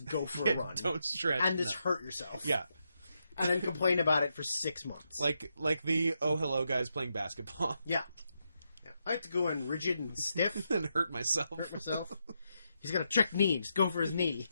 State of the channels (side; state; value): both; inverted; correlation -0.83